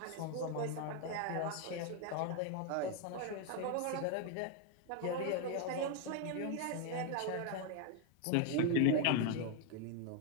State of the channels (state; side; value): different; both; correlation 0.01